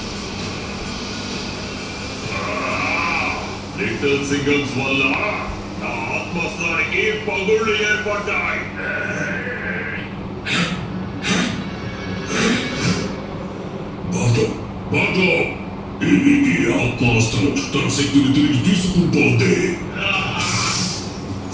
లిటిల్ సింగమ్స్ వల్ల నా ఆత్మస్థానికి పగుళ్ళు ఏర్పడ్డాయి. ఈ ఆత్మాస్త్రం తన శక్తిని తిరిగి తీసుకుంటోంది.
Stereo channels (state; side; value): identical; both; correlation 1.00